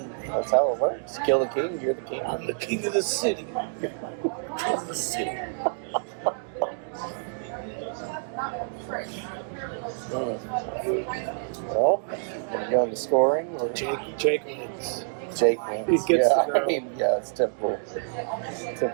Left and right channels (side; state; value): left; silent; digital silence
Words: That's how it works. Kill the king, you're the king. I'm the king of the city. Of the city. Well, gonna go into scoring. Jake wins. Jake wins. He gets yeah, the girl. I mean, yeah, it's typical.